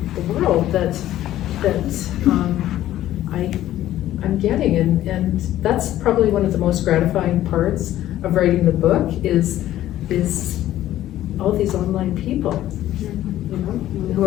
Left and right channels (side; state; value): right; quieter; 13.4 dB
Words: the world that I'm getting, and that's probably one of the most gratifying parts of writing the book is all these online people, you know.